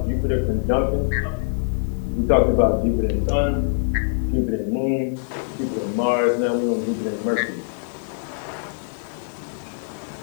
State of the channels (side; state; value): right; silent; digital silence